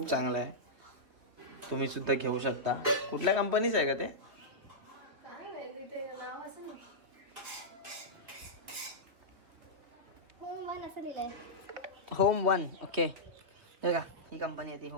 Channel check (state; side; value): late; left; 3.4 ms